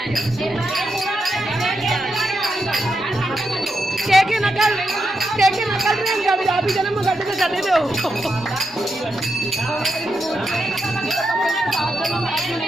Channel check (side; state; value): both; normal; correlation 0.84